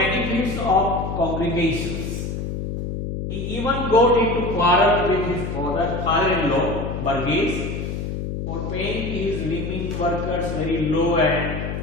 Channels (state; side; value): noise; left; hum, 4 dB below the sound